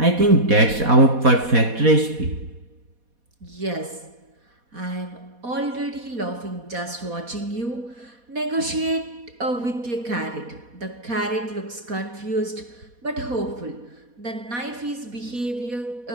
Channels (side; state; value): left; late; 4.2 ms